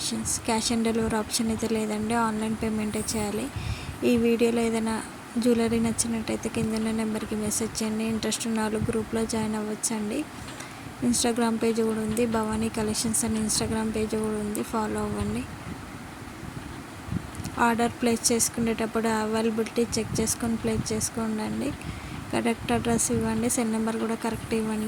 Cash on delivery option అయితే లేదండి, ఆన్లైన్ పేమెంటే చేయాలి. ఈ వీడియోలో ఏదైనా జ్యువెలరీ నచ్చినట్టయితే కింద ఉన్న నెంబర్కి మెసేజ్ చేయండి. ఇంట్రెస్ట్ ఉన్న వాళ్ళు గ్రూప్లో జాయిన్ అవ్వచ్చండి. ఇన్స్టాగ్రామ్ పేజ్ కూడా ఉంది, భవానీ కలెక్షన్స్ అని ఇన్స్టాగ్రామ్ పేజ్ కూడా ఉంది, ఫాలో అవ్వండి. ఆర్డర్ ప్లేస్ చేసుకునేటప్పుడు అవైలబిలిటీ చెక్ చేసుకొని ప్లేస్ చేసుకోండి. కరెక్ట్ అడ్రస్ ఇవ్వండి, సెల్ నెంబర్ కూడా కరెక్ట్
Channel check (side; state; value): both; identical; correlation 1.00